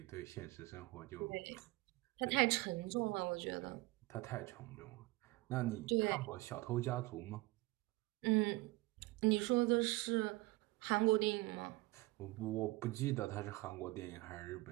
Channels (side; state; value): left; quieter; 21.2 dB